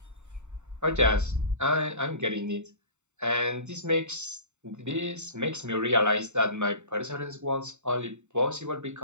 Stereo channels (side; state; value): left; late; 0.84 ms